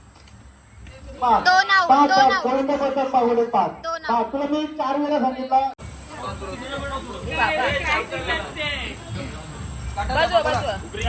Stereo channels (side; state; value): both; identical; correlation 1.00